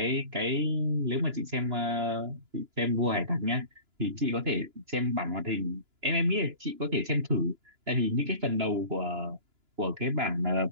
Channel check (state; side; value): late; left; 2.9 ms